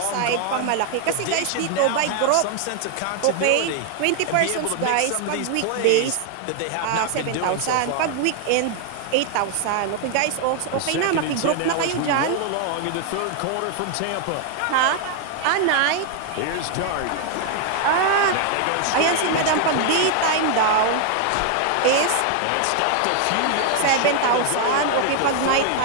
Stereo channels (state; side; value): different; both; correlation 0.00